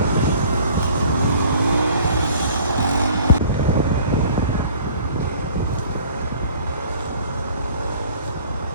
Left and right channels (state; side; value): inverted; both; correlation -0.51